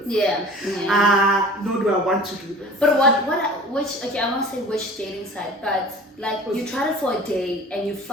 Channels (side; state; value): both; normal; correlation 0.42